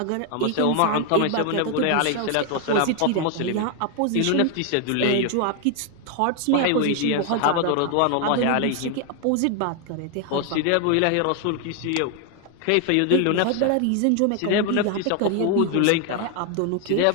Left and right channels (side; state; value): both; different; correlation 0.01